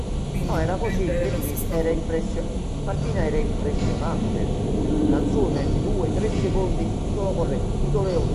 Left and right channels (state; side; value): identical; both; correlation 1.00